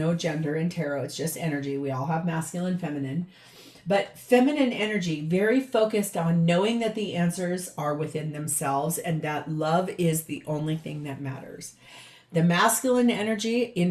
gender in tarot, it's just energy. We all have masculine, feminine. But feminine energy, very focused on knowing that the answers are within themselves and that love is the only thing that matters. The masculine energy,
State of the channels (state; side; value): identical; both; correlation 1.00